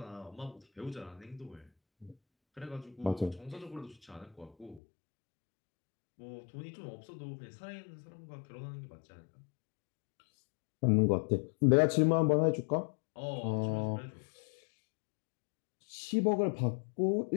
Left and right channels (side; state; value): right; drops out; at 4.8 s